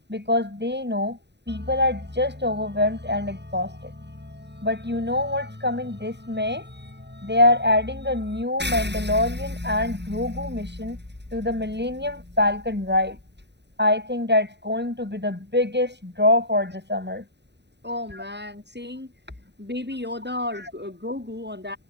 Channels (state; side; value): late; left; 0.50 ms